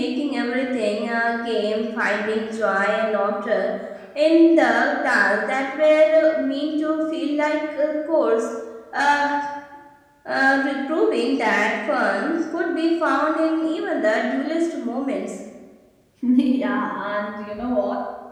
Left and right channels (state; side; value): identical; both; correlation 1.00